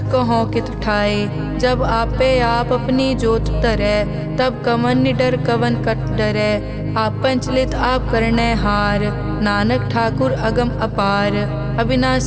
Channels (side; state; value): both; identical; correlation 1.00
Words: कहो कित ठाए। जब आपे आप अपनी जोत तरे तब कवन निडर कवन कट डरे। आपन चलित आप करने हार नानक ठाकुर अगम अपार।